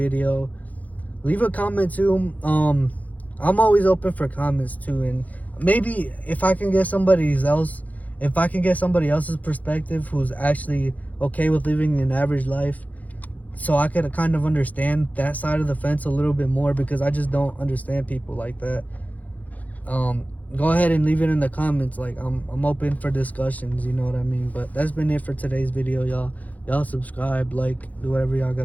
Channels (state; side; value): late; right; 0.076 ms